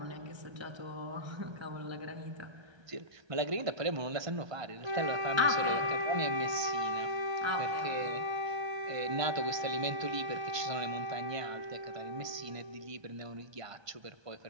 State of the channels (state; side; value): late; left; 1.3 ms